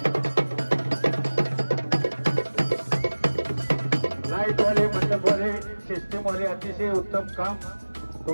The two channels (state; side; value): inverted; both; correlation -1.00